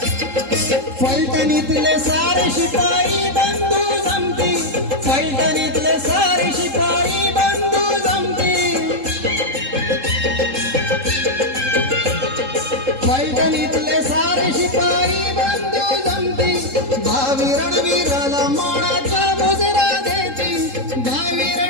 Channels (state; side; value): late; left; 3.7 ms